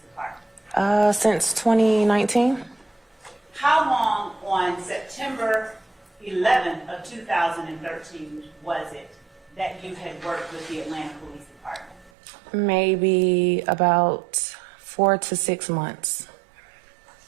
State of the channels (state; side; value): drops out; left; at 12.1 s